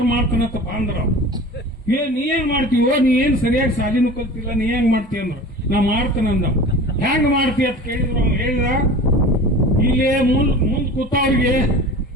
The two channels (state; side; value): normal; both; correlation 0.37